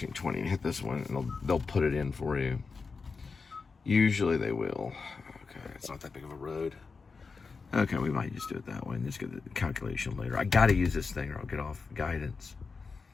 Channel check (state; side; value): quieter; right; 4.7 dB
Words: Hit this one, and they'll put it in for you. Usually they will. Okay, it's not that big of a road. Okay, we might just do it that way and just get the calculation later. I gotta use this thing or I'll get off guidance.